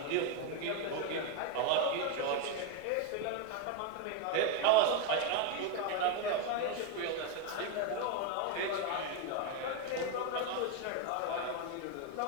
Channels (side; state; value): both; different; correlation 0.02